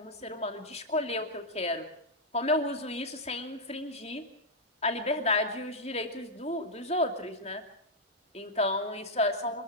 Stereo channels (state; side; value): normal; both; correlation -0.04